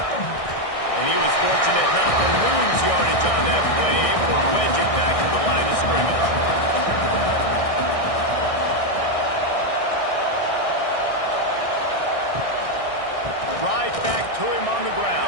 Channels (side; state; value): right; late; 1.6 ms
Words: And he was fortunate not to lose yardage on that play, able to wedge it back to the line of scrimmage. Right back to him on the